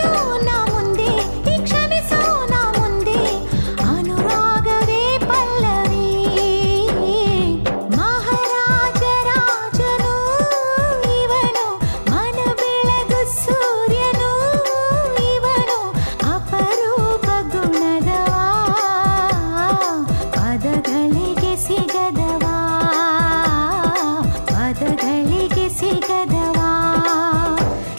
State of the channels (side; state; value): both; inverted; correlation -1.00